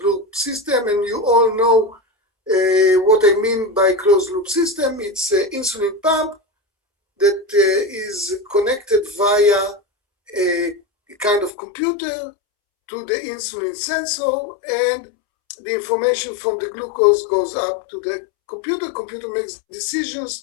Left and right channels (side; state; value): right; drops out; at 11.5 s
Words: loop system, and you all know what I mean by closed loop system. It's an insulin pump that is connected via a kind of computer to the insulin sensor, and the information from the glucose goes up to the computer. Computer makes